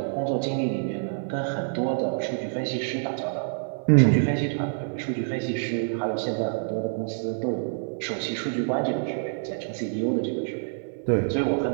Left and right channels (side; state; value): left; silent; 60 dB below the other